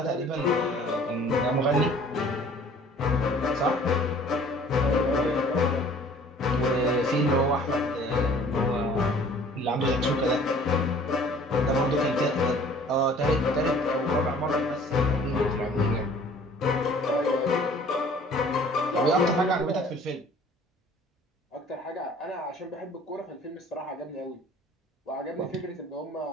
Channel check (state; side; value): normal; both; correlation 0.52